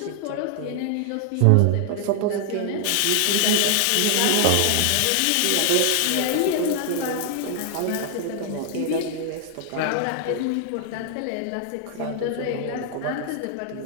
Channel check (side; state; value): both; different; correlation 0.00